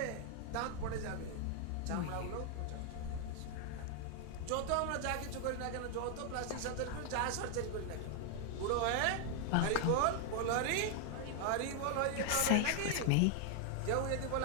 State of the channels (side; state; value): both; different; correlation 0.00